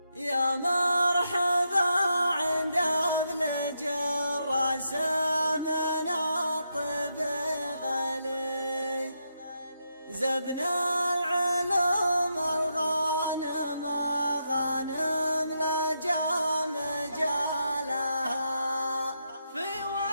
يا مرحبا عند ابن جراس من الطب غلي زبن العلوم الغانم غانم لجام جالها في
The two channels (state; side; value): inverted; both; correlation -0.82